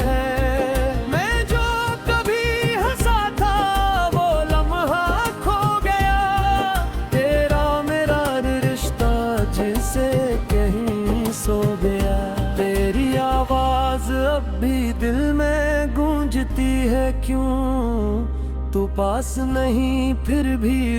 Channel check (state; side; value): identical; both; correlation 1.00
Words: मैं जो कभी हंसा था गूंजती है क्यों, तू पास नहीं फिर भी